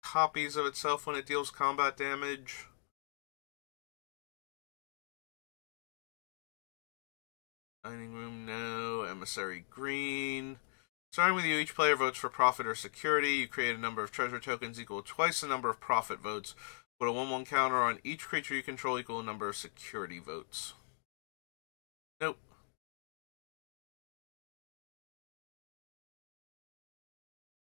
copies of itself when it deals combat damage. Dining Room, no. Emissary, green. Starting with you, each player votes for profit or security. You create a number of treasure tokens equal to twice the number of profit votes. Put a 1/1 counter on each creature you control equal to the number of security votes. Nope.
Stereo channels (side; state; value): right; silent; digital silence